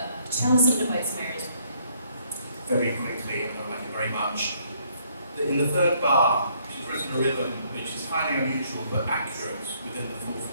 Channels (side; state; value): both; inverted; correlation -0.68